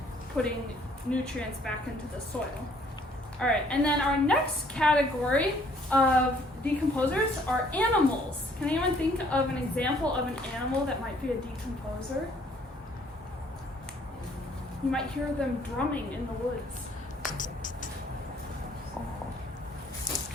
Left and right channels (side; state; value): both; normal; correlation 0.62